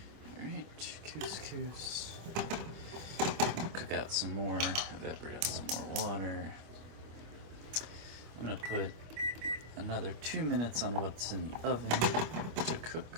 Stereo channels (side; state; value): left; late; 25 ms